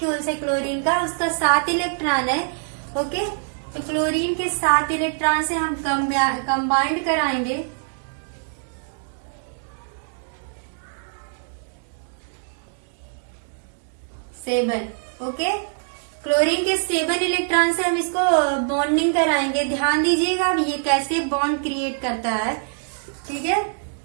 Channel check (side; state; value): left; silent; digital silence